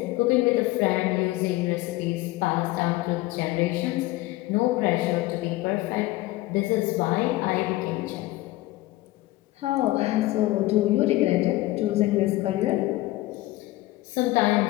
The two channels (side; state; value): right; quieter; 18.3 dB